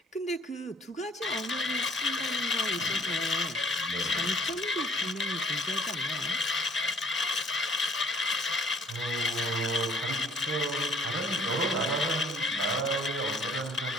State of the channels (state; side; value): normal; both; correlation 0.57